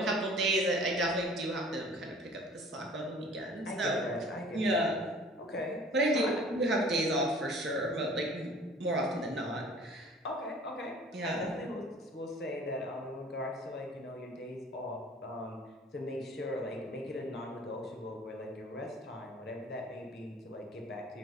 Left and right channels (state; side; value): normal; both; correlation 0.49